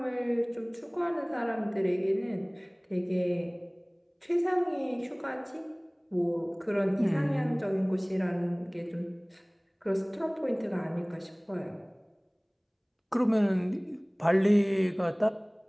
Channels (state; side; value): identical; both; correlation 1.00